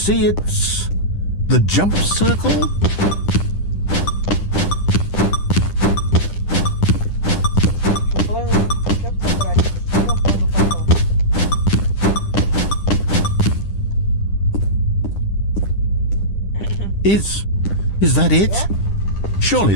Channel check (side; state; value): right; late; 10 ms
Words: It's the jump circle. Is that it? Surely